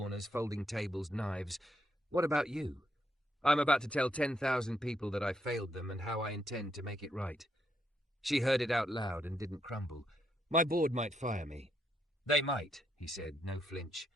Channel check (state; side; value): normal; both; correlation 0.77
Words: folding tables, knives. What about you? I'm about to tell 10,000 people that I failed them and how I intend to make it right. She heard it out loud and didn't crumble. My board might fire me. They might, he said, no flinch.